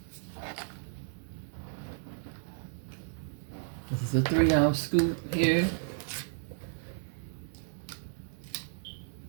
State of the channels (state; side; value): silent; left; digital silence